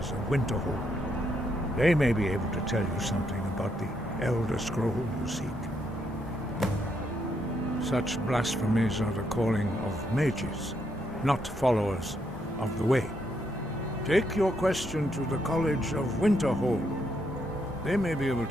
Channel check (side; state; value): both; normal; correlation 0.77